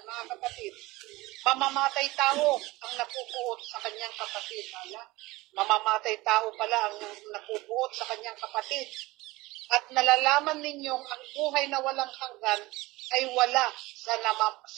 mga kapatid. Mamamatay tao ang napupuot sa kanyang kapatid. Mamamatay tao pala ang napupuot sa kanyang kapatid. At nalalaman ninyong ang buhay na walang hanggan ay wala sa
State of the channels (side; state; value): left; quieter; 20.5 dB